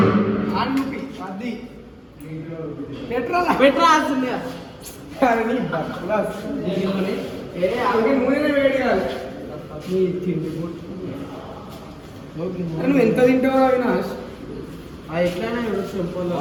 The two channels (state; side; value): identical; both; correlation 1.00